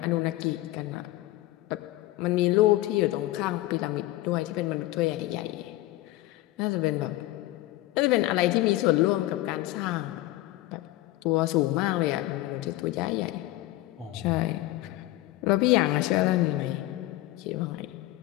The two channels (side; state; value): right; quieter; 17.1 dB